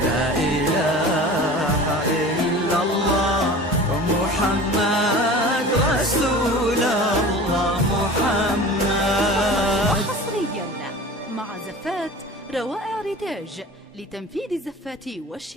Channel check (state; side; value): normal; both; correlation 0.38